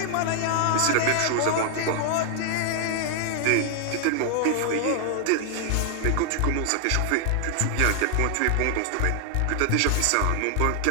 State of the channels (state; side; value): different; both; correlation 0.00